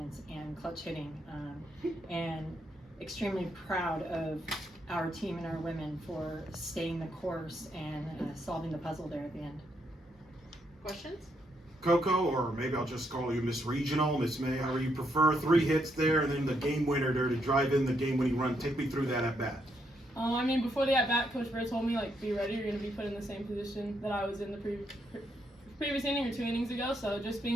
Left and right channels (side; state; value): both; normal; correlation 0.77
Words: and clutch hitting. And extremely proud of our team and our women for staying the course and solving the puzzle there at the end. Questions? Coco, or maybe I'll just call you Miss Regional, Miss May, however you prefer. 3 hits there, and then the game winner there to drive in the game-winning run. Take me through that at bat. I mean, before the at-bat, Coach Bird told me, like, be ready. You're going to be put in the same position that I was in the previous inning or 2 innings ago. So just